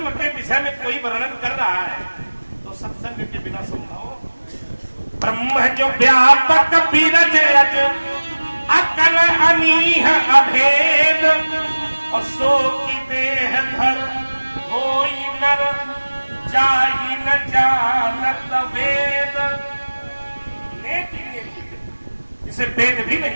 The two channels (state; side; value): inverted; both; correlation -1.00